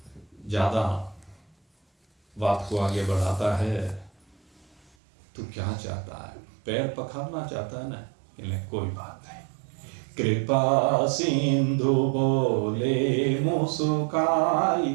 ज्यादा बात को आगे बढ़ाता है, तू क्या चाहता है? पैर पखारना चाहता है ना? कोई बात नहीं। कृपा सिंधु बोले मुस्काई,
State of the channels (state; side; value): drops out; left; at 4.9 s